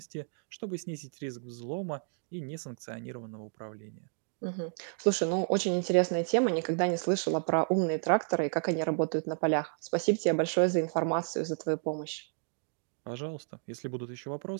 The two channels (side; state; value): left; silent; 57 dB below the other